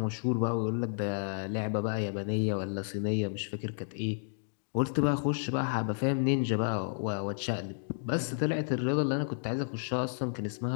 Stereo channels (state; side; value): silent; right; digital silence